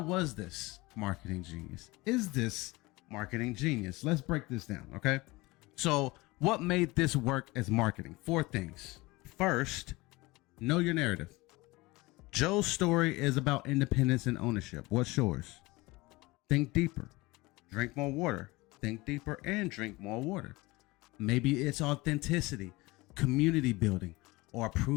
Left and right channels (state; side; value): quieter; right; 22.1 dB